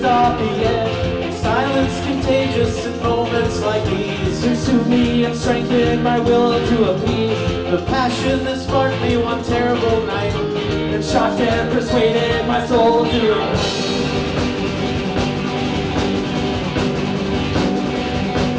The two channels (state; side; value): identical; both; correlation 1.00